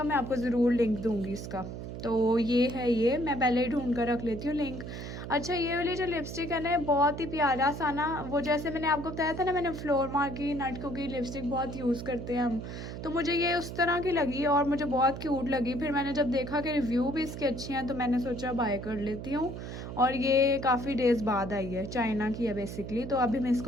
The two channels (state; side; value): noise; right; hum, 8 dB below the sound